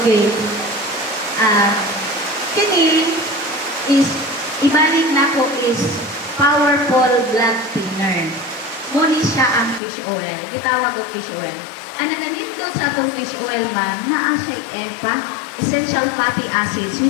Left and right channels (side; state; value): right; drops out; at 9.8 s